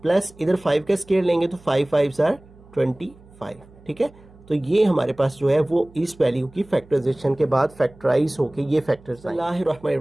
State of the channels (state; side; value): noise; right; hum, 25 dB below the sound